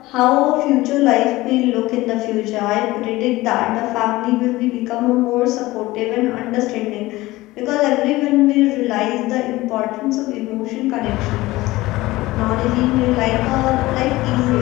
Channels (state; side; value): quieter; right; 18.8 dB